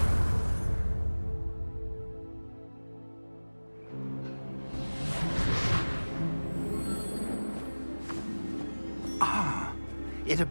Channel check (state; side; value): inverted; both; correlation -1.00